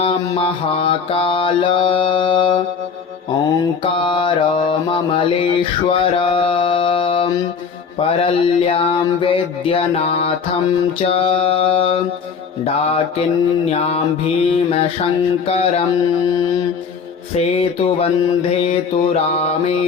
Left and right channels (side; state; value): right; quieter; 5.9 dB